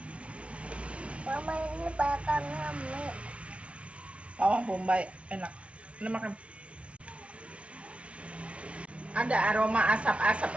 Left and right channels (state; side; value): late; left; 0.061 ms